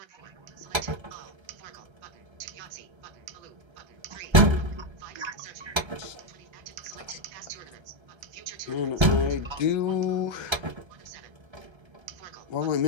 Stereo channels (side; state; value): left; late; 1.3 ms